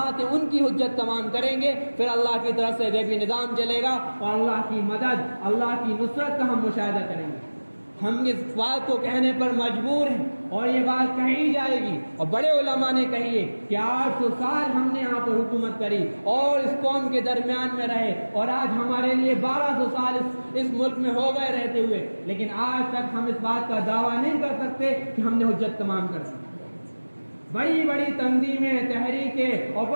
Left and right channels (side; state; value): both; inverted; correlation -1.00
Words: ہیں ان کی حجت تمام کریں گے، پھر اللہ کی طرف سے غیبی نظام چلے گا اور اللہ کی مدد، اللہ کی نصرت کا ہم مشاہدہ کریں گے۔ ہم اس بات کو کہنے پر مجبور ہیں اور یہ بات کہی جائے گی، اور بڑے علماء نے کہی ہے کہ 800 سال ہم نے یہاں پر حکومت کری اور اس قوم کے درمیان میں رہے، اور آج ہمارے لیے 1200 سال اس ملک میں ہو گئے رہتے ہوئے، لیکن آج تک ہم اس بات کا دعویٰ نہیں کر سکتے کہ ہم نے حجت تمام کر دی۔ بڑی بڑی تنظیمیں، تحریکیں اور